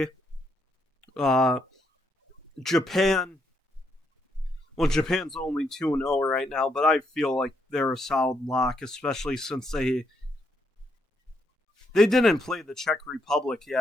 Uh, Japan. Well, Japan's only 2-0 right now, but I feel like they're a solid lock, especially since they didn't play the Czech Republic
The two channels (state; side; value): normal; both; correlation 0.76